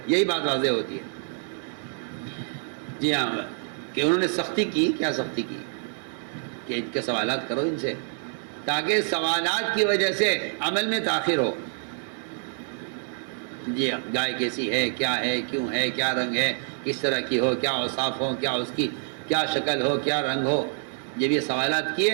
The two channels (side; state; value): left; silent; digital silence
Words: یہی بات واضح ہوتی ہے. جی ہاں، کہ انہوں نے سختی کی. کیا سختی کی؟ کہ ان کے سوالات کرو ان سے، تاکہ سوالات کی وجہ سے عمل میں تاخیر ہو. جی گائے کیسی ہے، کیا ہے، کیوں ہے، کیا رنگ ہے، کس طرح کی ہو، کیا اوصاف ہو، کیا اس کی کیا شکل ہو، کیا رنگ ہو. جب یہ سوالات